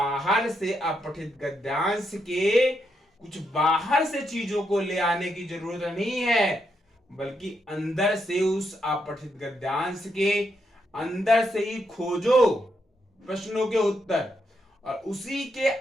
से, अपठित गद्यांश के कुछ बाहर से चीजों को ले आने की जरूरत नहीं है, बल्कि अंदर से उस अपठित गद्यांश के अंदर से ही खोजो प्रश्नों के उत्तर, और उसी के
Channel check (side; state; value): both; normal; correlation 0.80